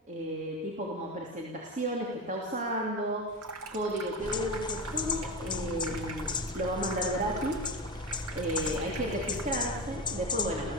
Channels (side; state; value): both; normal; correlation 0.21